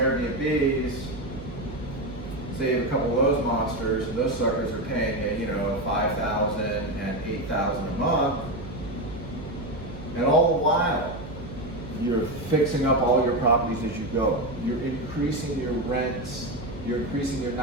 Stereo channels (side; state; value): right; noise; hum, 12 dB below the sound